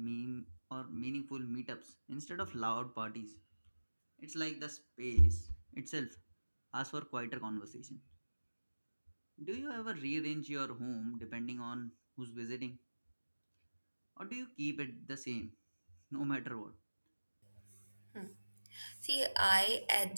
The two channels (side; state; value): both; inverted; correlation -1.00